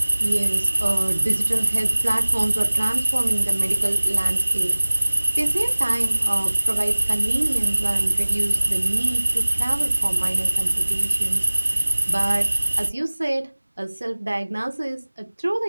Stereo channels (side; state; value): both; inverted; correlation -1.00